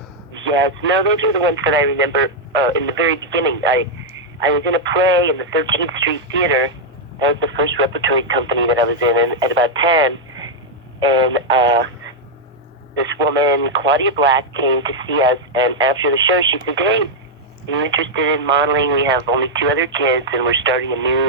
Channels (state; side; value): normal; both; correlation -0.02